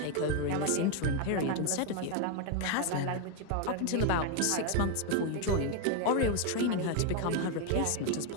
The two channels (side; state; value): both; different; correlation 0.01